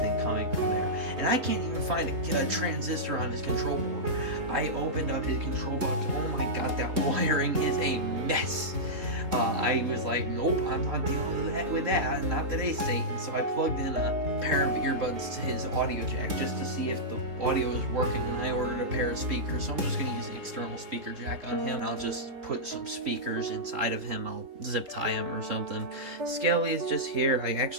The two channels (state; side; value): late; left; 3.4 ms